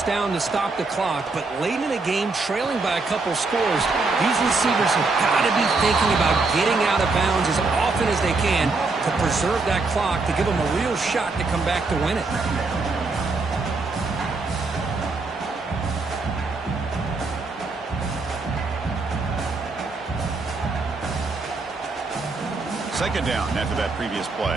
down to stop the clock. But late in the game, trailing by a couple scores, these receivers have got to be thinking about getting out of bounds as often as they can to preserve that clock, to give them a real shot to come back to win it. Second down after that previous play.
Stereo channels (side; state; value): left; quieter; 3.8 dB